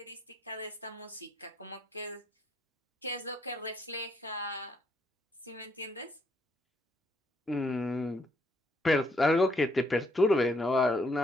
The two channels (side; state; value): both; normal; correlation 0.72